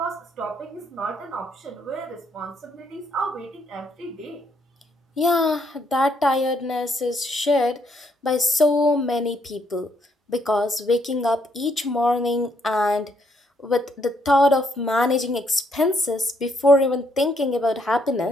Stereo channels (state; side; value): normal; both; correlation 0.72